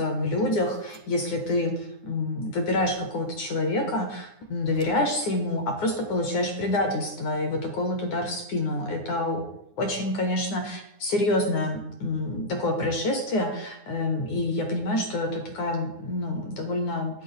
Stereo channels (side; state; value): right; late; 9.7 ms